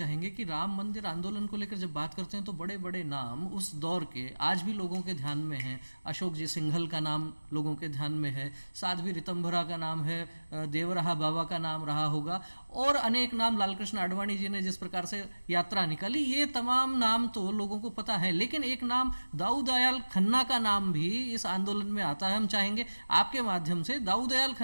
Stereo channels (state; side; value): inverted; both; correlation -1.00